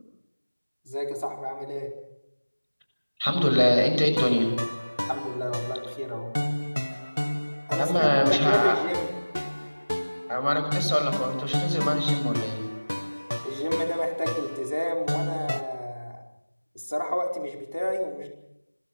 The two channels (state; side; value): inverted; both; correlation -1.00